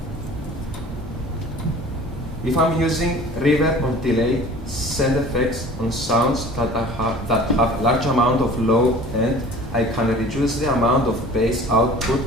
If I'm using reverb or delay send effects on sounds that have large amount of low end, I can reduce the amount of bass output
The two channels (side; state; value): both; normal; correlation 0.44